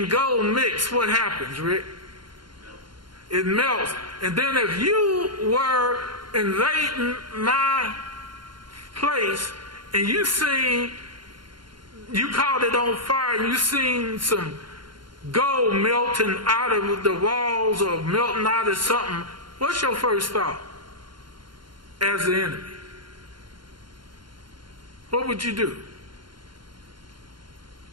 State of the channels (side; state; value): left; late; 0.72 ms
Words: gold mix, what happens, Rick? It melts. And then if you were invading my place and you caught it on fire and you seen some gold melting out of the walls or melting out of something, what's your first thought as the enemy? What would you do?